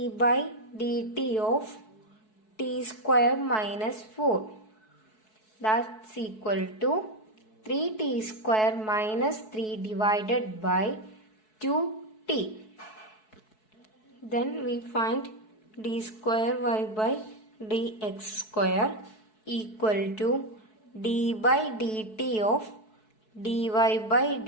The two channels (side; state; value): right; late; 4.6 ms